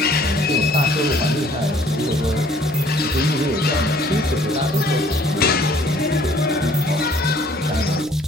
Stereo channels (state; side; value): normal; both; correlation 0.58